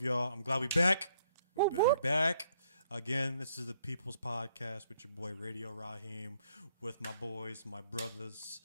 y'all. I'm glad we back. We're back. Again, this is the People's Podcast with your boy Radio Raheem, with my boys, my brothers,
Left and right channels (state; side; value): inverted; both; correlation -0.68